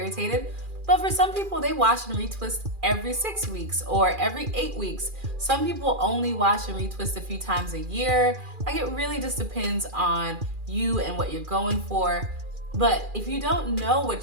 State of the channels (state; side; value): late; left; 2.4 ms